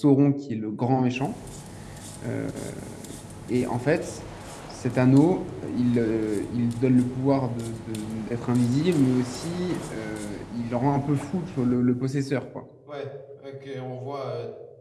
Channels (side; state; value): both; identical; correlation 1.00